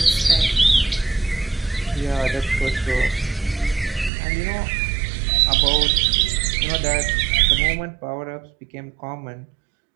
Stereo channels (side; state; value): left; drops out; at 4.1 s